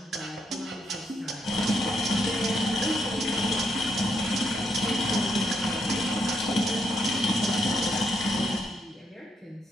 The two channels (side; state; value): both; normal; correlation 0.76